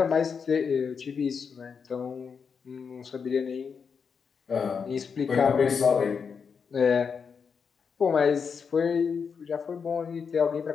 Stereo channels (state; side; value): quieter; right; 6.1 dB